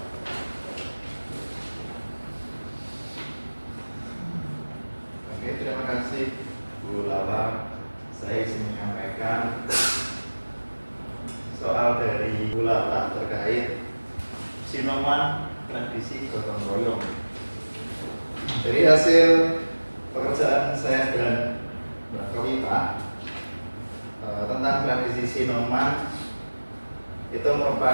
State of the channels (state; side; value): inverted; both; correlation -1.00